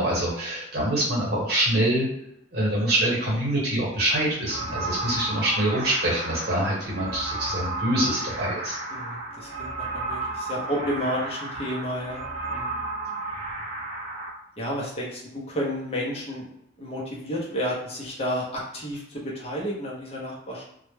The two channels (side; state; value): both; normal; correlation 0.27